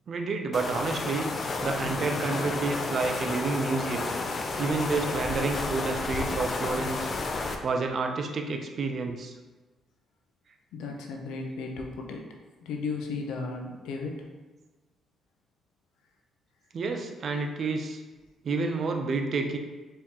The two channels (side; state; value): both; normal; correlation 0.73